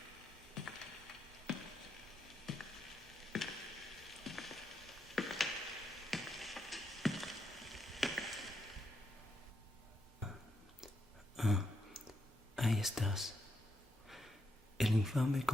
Ahí estás. El infame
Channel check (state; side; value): normal; both; correlation 0.81